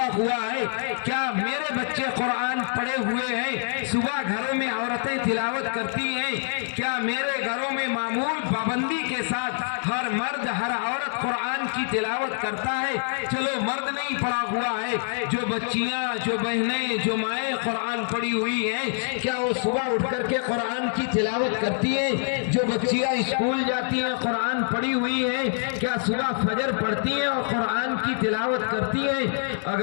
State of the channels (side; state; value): right; silent; 61 dB below the other